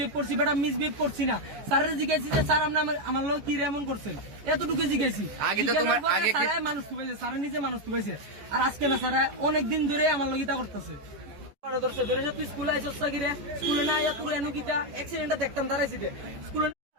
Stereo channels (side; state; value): left; late; 14 ms